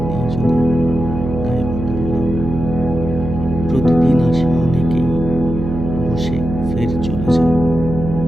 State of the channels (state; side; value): noise; right; hum, 5 dB below the sound